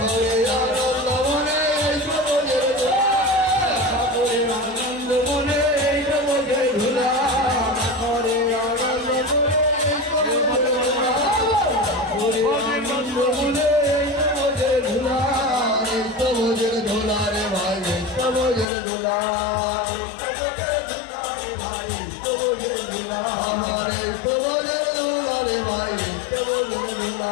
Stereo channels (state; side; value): drops out; right; at 18.7 s